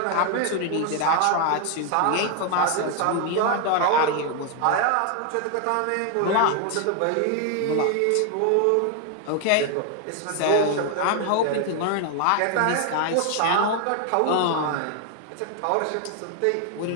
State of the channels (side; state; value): both; different; correlation 0.01